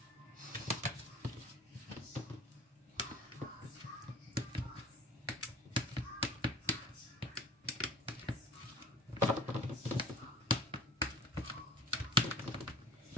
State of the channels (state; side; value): normal; both; correlation 0.45